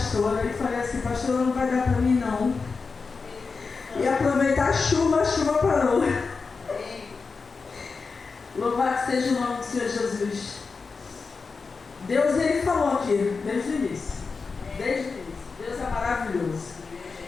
e falei assim: pastora, não vai dar para mim não. E aproveitar a chuva parou. Louvado seja o nome do Senhor Jesus. Deus, Ele falou aqui, desde o início. Desde o início. Deus é maravilhoso.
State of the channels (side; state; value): right; quieter; 4.7 dB